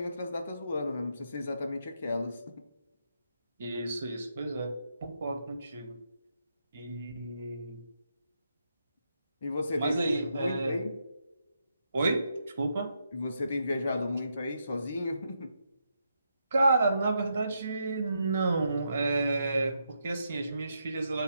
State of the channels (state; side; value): inverted; both; correlation -0.81